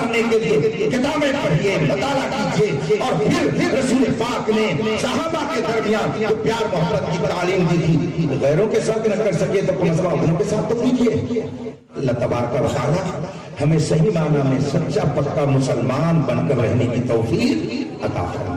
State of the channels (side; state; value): both; identical; correlation 1.00